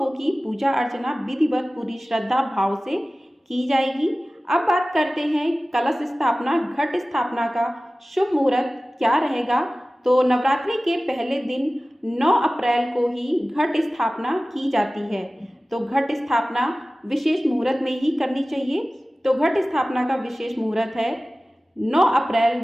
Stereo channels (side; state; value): both; normal; correlation 0.97